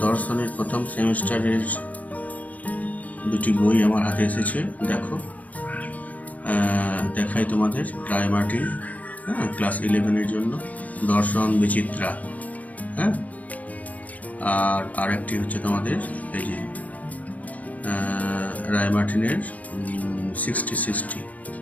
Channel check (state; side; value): late; right; 0.074 ms